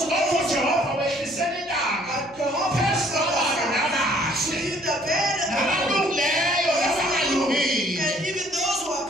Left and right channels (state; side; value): noise; right; hum, 27 dB below the sound